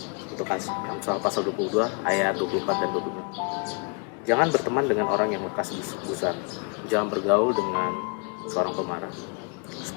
untuk Amsal pasal 22 ayat 24 dan 25. Jangan berteman dengan orang yang lekas gusar. Jangan bergaul dengan seorang pemarah,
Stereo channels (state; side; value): quieter; right; 36.5 dB